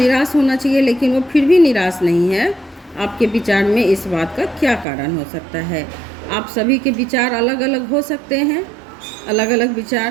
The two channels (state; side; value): drops out; left; at 4.9 s